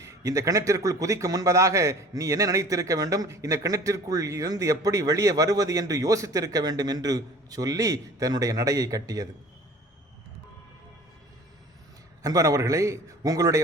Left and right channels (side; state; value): both; normal; correlation 0.46